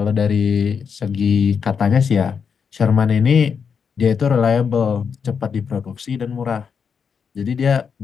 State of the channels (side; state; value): right; quieter; 6.4 dB